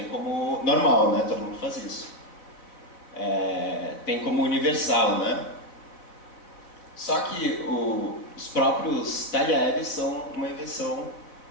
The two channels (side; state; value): right; late; 4.1 ms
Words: como normal, né? Todo mundo faz isso. Tem como universal, né? Só que os próprios talheres são uma invenção